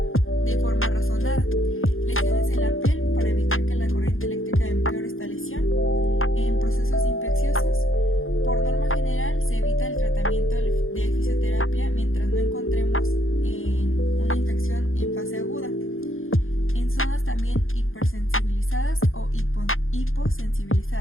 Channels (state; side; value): late; right; 0.60 ms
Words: de forma razonada. Lesiones en la piel, para evitar que la corriente eléctrica empeore esta lesión. En procesos infecciosos, por norma general se evita el tratamiento de fisioterapia mientras no encontremos una infección en fase aguda. En zonas también hipersensibilizadas o